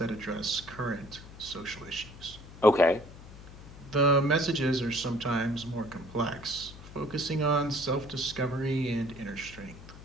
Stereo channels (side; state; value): left; noise; hum, 16 dB below the sound